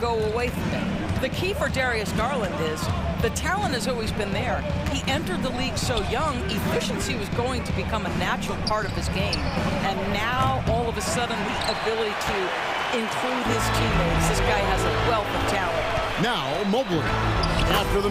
away from it. The key for Darius Garland is the talent has always been there. He entered the league so young, efficiency was going to become a natural part of his game. And now, all of a sudden, the ability to include his teammates. This guy has a wealth of talent. Now, Mobley. After the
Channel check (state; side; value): identical; both; correlation 1.00